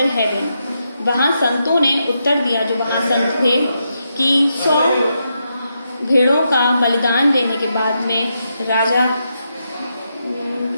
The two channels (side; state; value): both; inverted; correlation -0.83